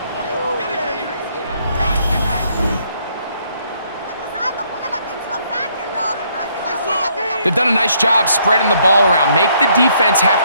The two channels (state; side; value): inverted; both; correlation -0.69